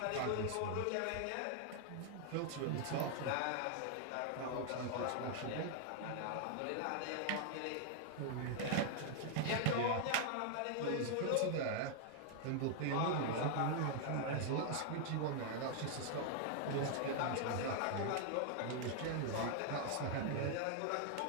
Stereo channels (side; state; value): both; different; correlation 0.00